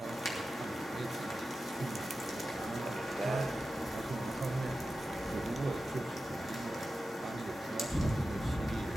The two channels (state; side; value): normal; both; correlation 0.93